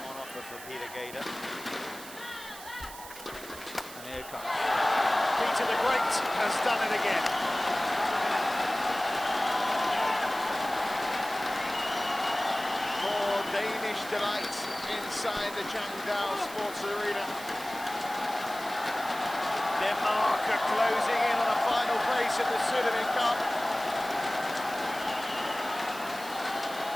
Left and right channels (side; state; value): right; noise; hiss, 14 dB below the sound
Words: on offer for Peter Gade. And here it comes. Peter the Great has done it again. More Danish delight inside the Changdal Sports Arena. Denmark are closing in on a final place at the Surdiman Cup.